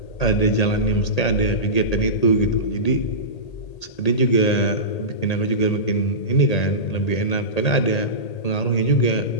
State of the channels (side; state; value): right; late; 1.8 ms